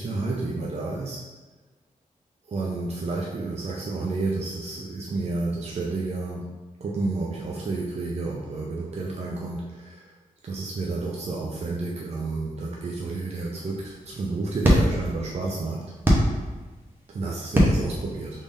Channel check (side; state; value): both; normal; correlation 0.83